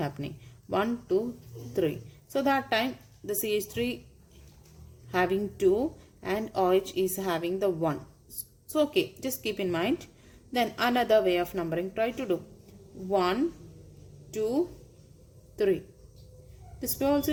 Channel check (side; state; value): both; identical; correlation 1.00